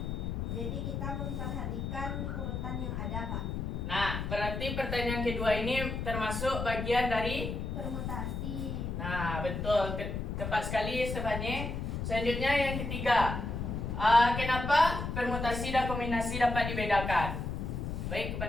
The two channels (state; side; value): noise; left; rumble, 3 dB below the sound